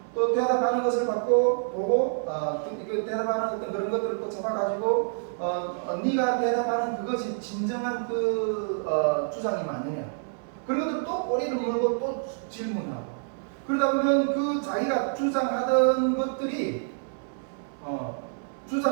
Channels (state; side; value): silent; left; 60 dB below the other